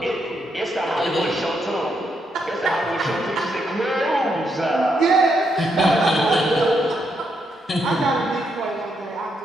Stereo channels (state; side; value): normal; both; correlation 0.79